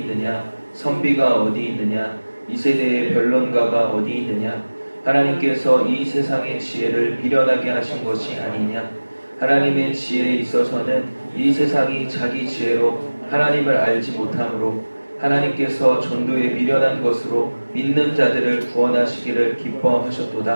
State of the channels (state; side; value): inverted; both; correlation -1.00